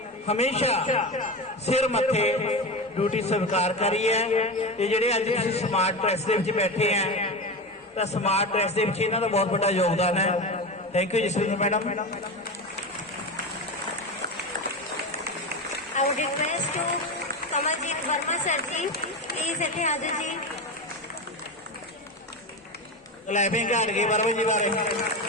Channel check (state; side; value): normal; both; correlation 0.21